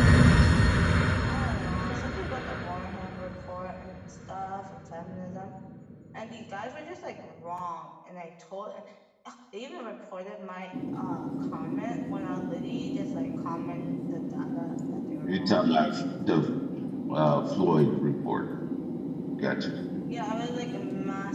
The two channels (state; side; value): identical; both; correlation 1.00